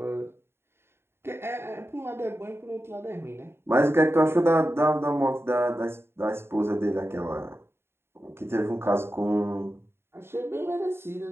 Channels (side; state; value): left; late; 0.12 ms